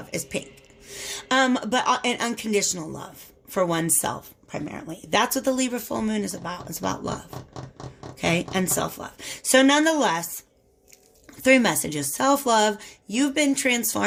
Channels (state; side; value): identical; both; correlation 1.00